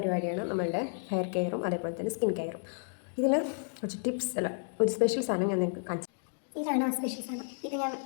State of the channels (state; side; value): silent; right; 57 dB below the other